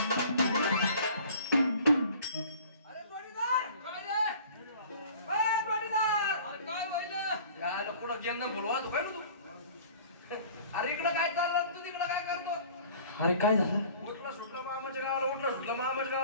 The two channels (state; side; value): inverted; both; correlation -0.47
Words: बोलवा तू काय तू अरे इकडं काय चाललं तू तिकडं काय करतो अरे काय झालं उठला सुटला मामाच्या गावाला उठला सुटला मामाच्या